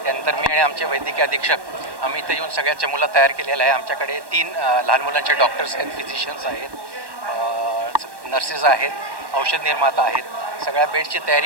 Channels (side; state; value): left; late; 1.1 ms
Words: त्यानंतर मी आणि आमचे वैद्यकीय अधीक्षक आम्ही इथे येऊन सगळ्याच्या मुलं तयार केलेलं आहे. आमच्याकडे 3 लहान मुलांचे डॉक्टर्स आहेत, फिजिशियन्स आहेत, नर्सेस आहेत, औषध निर्माता आहेत. सगळ्या बेडची